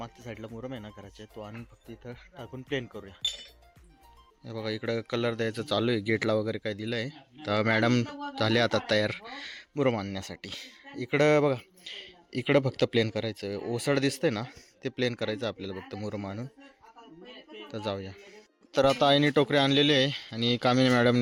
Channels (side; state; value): both; identical; correlation 1.00